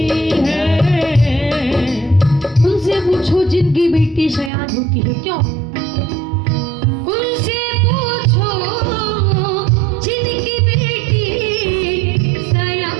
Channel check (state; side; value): drops out; left; at 4.5 s